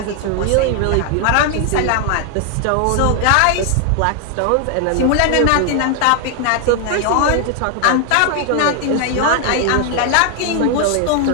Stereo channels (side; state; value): both; different; correlation 0.00